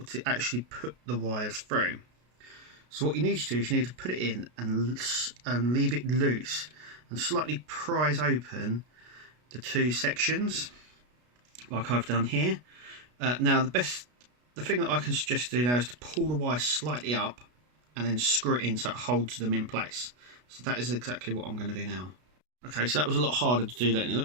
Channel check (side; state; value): left; late; 33 ms